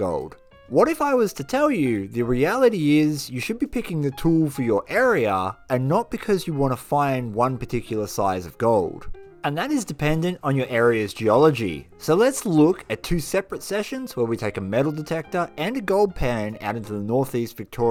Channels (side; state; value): both; identical; correlation 1.00